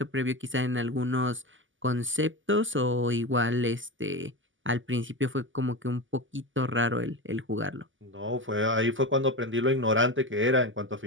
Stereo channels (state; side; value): late; left; 0.57 ms